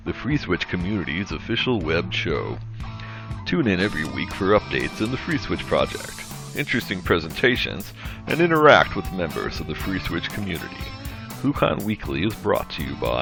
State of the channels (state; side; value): identical; both; correlation 1.00